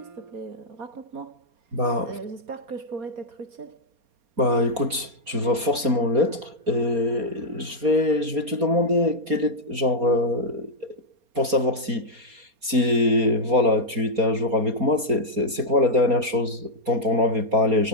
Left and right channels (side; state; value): left; late; 4.3 ms